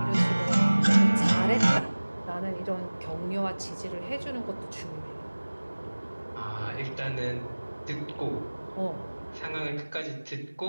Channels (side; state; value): both; inverted; correlation -1.00